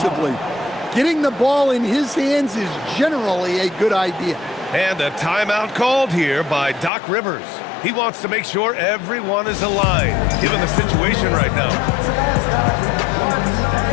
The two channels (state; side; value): drops out; right; at 6.9 s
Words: Getting the ball in his hands is generally a good idea. And a timeout called here by Doc Rivers. He wants to make sure everyone is aligned, given the situation right now.